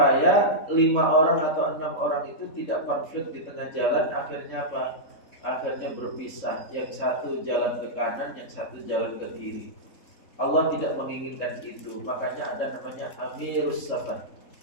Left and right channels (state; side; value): late; right; 3.7 ms